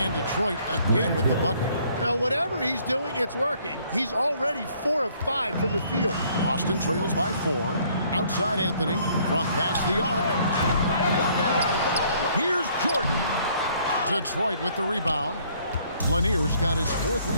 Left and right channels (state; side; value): inverted; both; correlation -0.63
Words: Detroit again with the bucket. Now, whatever he's doing, it's working. He's already 4 of 5 from the field. Austin trails by 4. Outside Anthony from past the arc. Here's Jordan. Detroit with the rebound. Lanier's got his 4th